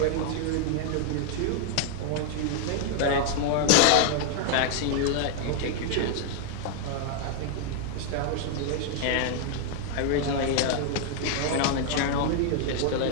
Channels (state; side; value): different; both; correlation 0.00